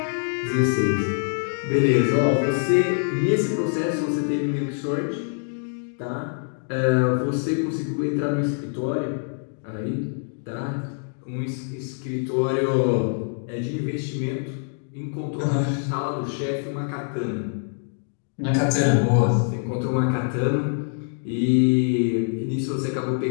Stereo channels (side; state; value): right; silent; 59 dB below the other